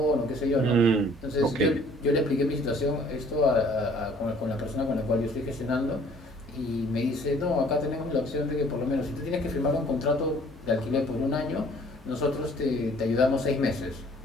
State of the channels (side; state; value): both; normal; correlation 0.56